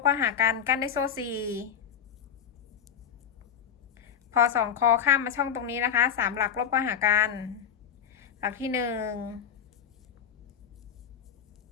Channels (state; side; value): quieter; right; 8.2 dB